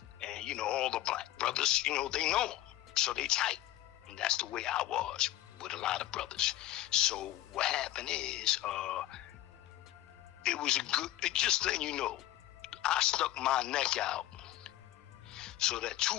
And, you know, all the black brothers, you know, they know them. So they tight. And that's the way I was with a lot of brothers. So what happened is, it was just letting you know, I stuck my neck out so that two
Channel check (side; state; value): right; quieter; 14.6 dB